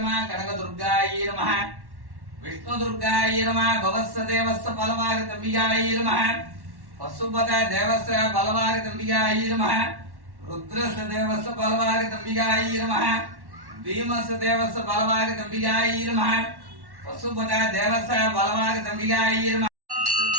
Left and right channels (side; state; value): left; late; 1.1 ms